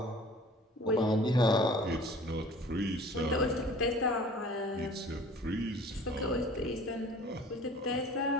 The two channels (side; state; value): both; normal; correlation 0.47